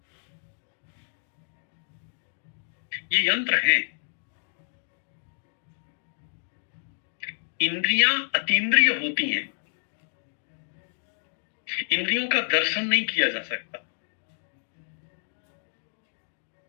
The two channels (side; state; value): right; silent; digital silence